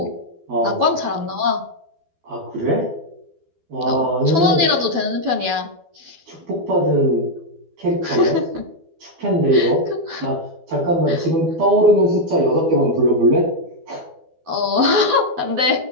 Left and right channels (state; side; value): late; left; 12 ms